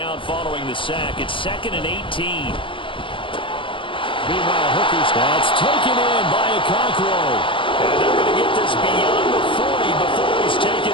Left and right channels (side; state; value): right; late; 0.25 ms